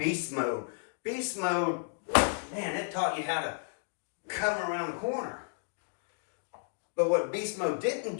mode. Beast mode, man, it taught you how to come around the corner. But what Beast Mode didn't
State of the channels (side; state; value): right; silent; digital silence